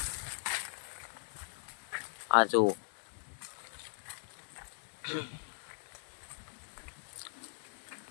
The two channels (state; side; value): silent; right; digital silence